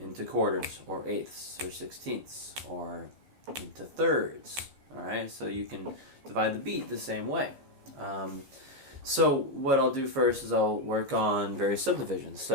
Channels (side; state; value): left; late; 15 ms